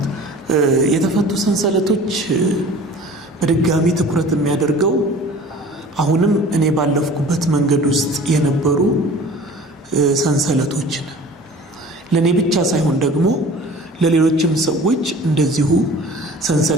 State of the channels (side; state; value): both; normal; correlation 0.44